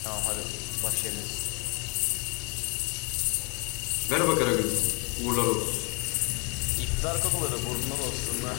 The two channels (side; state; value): right; quieter; 34.3 dB